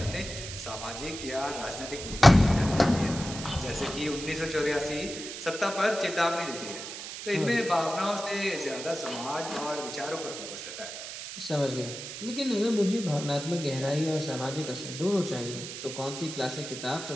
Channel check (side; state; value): right; noise; hiss, 9 dB below the sound